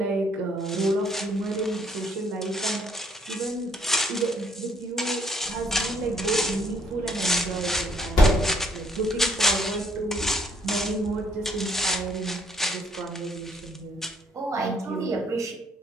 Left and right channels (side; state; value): both; normal; correlation 0.67